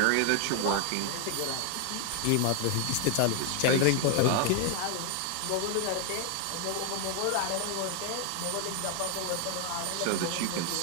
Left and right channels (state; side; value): different; both; correlation 0.00